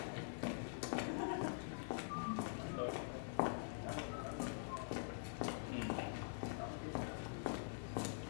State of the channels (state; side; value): silent; right; digital silence